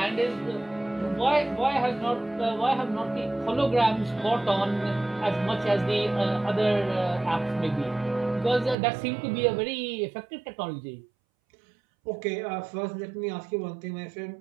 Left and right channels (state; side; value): drops out; left; at 8.8 s